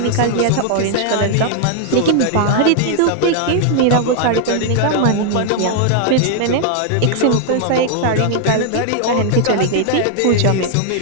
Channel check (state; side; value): different; both; correlation 0.00